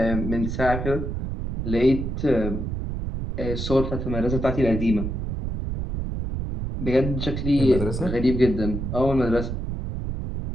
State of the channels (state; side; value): noise; right; rumble, 4 dB below the sound